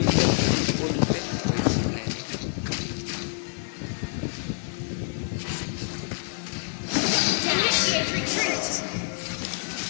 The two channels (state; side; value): silent; right; 57 dB below the other